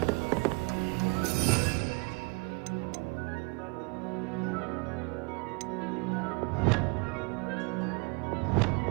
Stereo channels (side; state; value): left; quieter; 29.0 dB